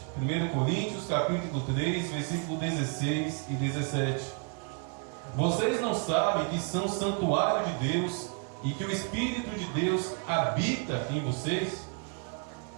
1 Coríntios, capítulo 3, versículo 16 e 17. Vocês não sabem que são santuário de Deus e que o Espírito de Deus habita em vocês?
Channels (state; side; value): quieter; left; 37.7 dB